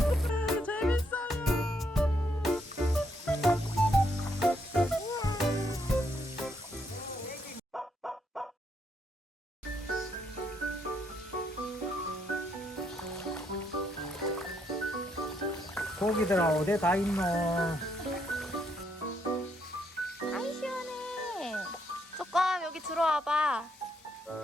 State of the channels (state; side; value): normal; both; correlation 0.75